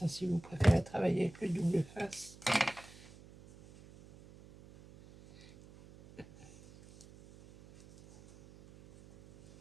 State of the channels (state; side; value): noise; right; hum, 22 dB below the sound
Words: hein, si vous préférez travailler avec le double face.